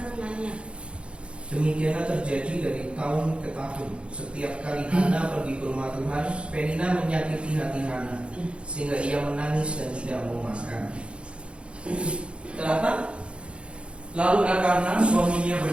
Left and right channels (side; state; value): left; late; 0.058 ms